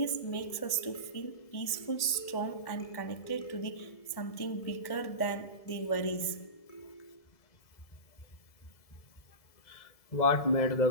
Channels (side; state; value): right; late; 1.7 ms